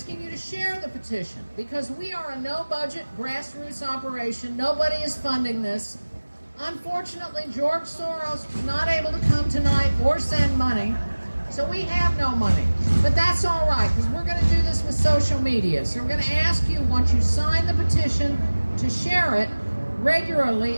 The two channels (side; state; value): both; inverted; correlation -1.00